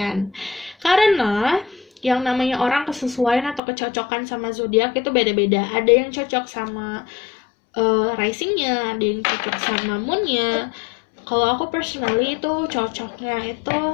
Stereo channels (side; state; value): right; drops out; at 3.6 s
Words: Karena yang namanya orang kesesuaian atau kecocokan sama zodiak itu beda-beda. Ada yang cocok sama risingnya, ada yang cocok sama moonnya. Kalau aku personally itu cocoknya itu